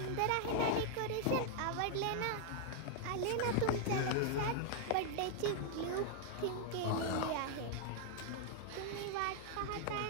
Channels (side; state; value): both; different; correlation 0.00